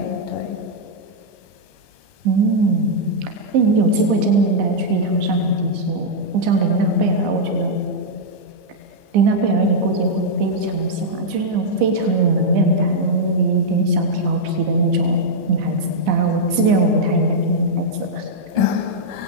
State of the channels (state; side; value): late; left; 15 ms